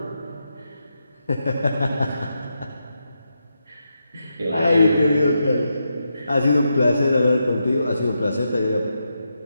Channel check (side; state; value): both; inverted; correlation -0.85